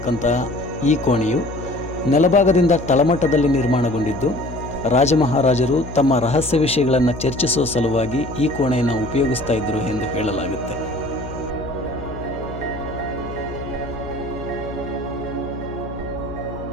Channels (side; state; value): left; noise; hum, 11 dB below the sound